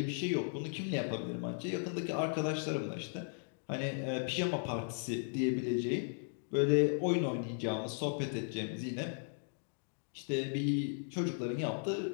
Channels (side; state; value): right; silent; digital silence